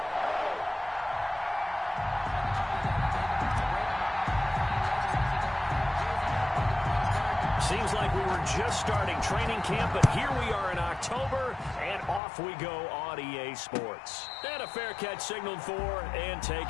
Seems like we were just starting training camp, but here we are in October, and off we go on EA Sports. And a fair catch signaled for and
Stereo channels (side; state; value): right; drops out; at 12.2 s